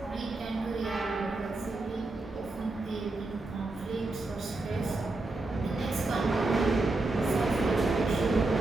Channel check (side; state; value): left; quieter; 3.1 dB